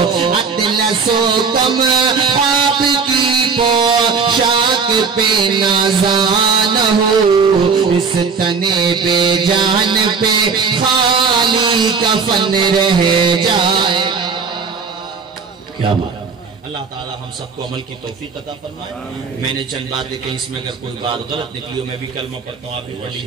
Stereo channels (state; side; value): quieter; left; 5.3 dB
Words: اطلس و کم آپ کی پوشاک پہ نازان ہو. اس تنے پہ جان پہ خالی کفن رہ جائے. کیا بات. اللہ تعالی ہم سب کو عمل کی توفیق عطا فرمائے. میں نے چند باتیں کہیں، اس میں اگر کوئی بات غلط نکلی ہو، میں بھی کلمہ پڑھتا ہوں، آپ بھی پڑھ